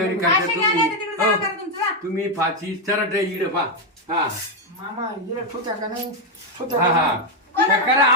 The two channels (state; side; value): normal; both; correlation 0.03